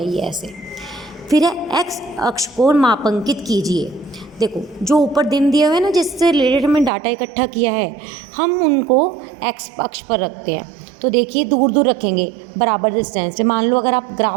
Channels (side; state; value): left; drops out; at 6.9 s